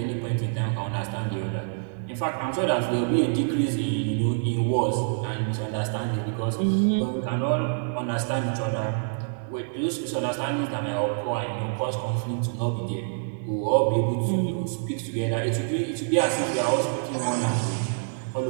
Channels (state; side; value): silent; left; digital silence